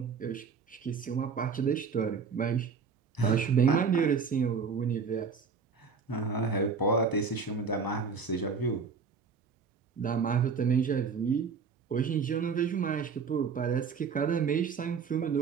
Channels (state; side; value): quieter; left; 5.6 dB